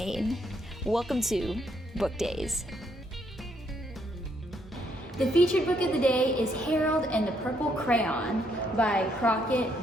Welcome to Book Days. The featured book of the day is Harold and the Purple Crayon by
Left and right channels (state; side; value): normal; both; correlation 0.73